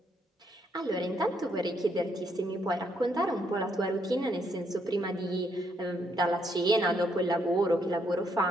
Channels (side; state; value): both; normal; correlation 0.74